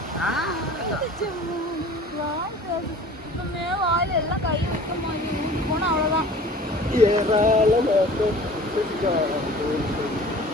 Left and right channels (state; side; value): normal; both; correlation 0.44